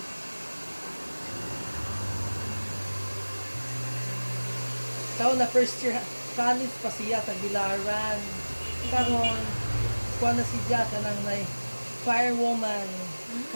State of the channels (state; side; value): inverted; both; correlation -1.00